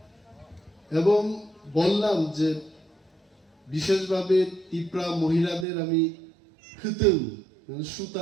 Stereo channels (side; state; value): left; drops out; at 5.7 s